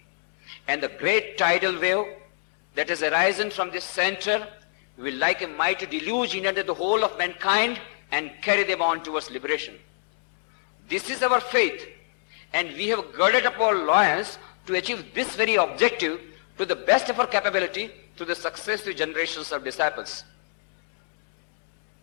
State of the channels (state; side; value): silent; right; 62 dB below the other